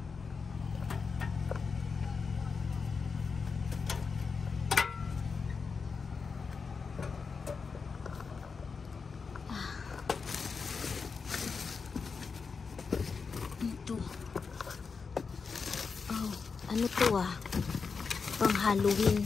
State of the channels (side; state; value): right; quieter; 5.1 dB